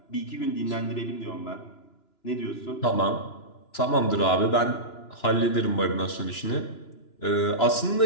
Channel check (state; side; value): late; right; 2.9 ms